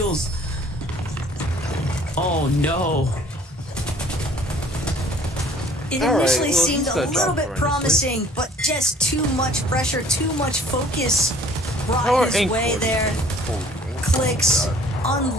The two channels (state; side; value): normal; both; correlation 0.54